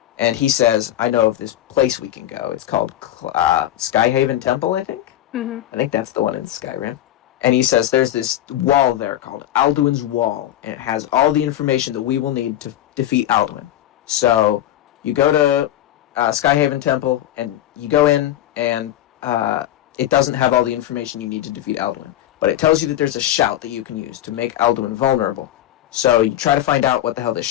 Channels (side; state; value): right; quieter; 12.8 dB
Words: and he says, I know of this place we can go. It's called Skyhaven Temple, I think? Mm-hmm. I think that's the one in Skyrim. And he says, there's this wall there called Alduin's Wall, and it has all the information that we will need to defeat Alduin. So you go to Skyhaven Temple, and you go in, and it doesn't have all the information you need to defeat Alduin. But it tells you that there's a shout that you can use to make Alduin vulnerable. So you try to find out what the hell this